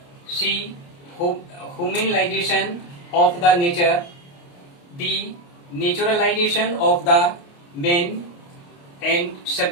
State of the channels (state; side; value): late; right; 29 ms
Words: C humanization of the nature, D naturalization of the man and